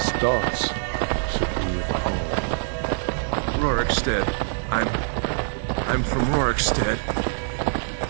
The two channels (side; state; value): left; silent; 62 dB below the other